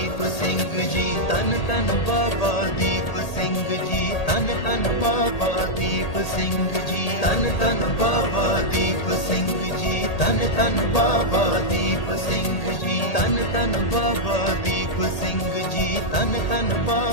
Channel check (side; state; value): right; late; 1.8 ms